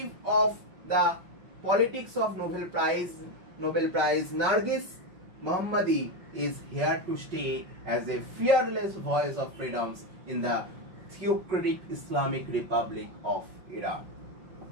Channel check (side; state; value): left; late; 5.5 ms